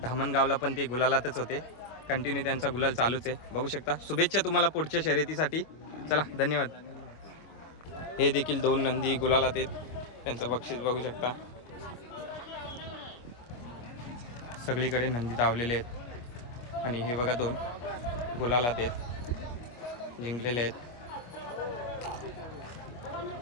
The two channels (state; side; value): late; right; 25 ms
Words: धामणगावला पण ते गुलालातच होते. कंटिन्यू त्यांचा गुलाल चालूच आहे. बघू शकता. शुभेच्छा तुम्हाला पुढच्या शर्यतीसाठी. चला धन्यवाद. हे देखील 2 नंदी गुलालात आहेत. त्यांचं बक्षीस बघू शकता. सगळीकडे नंदी धावलेले आहेत आणि हे बघा 2 गुलालात आहेत, जिंकलेले आहेत.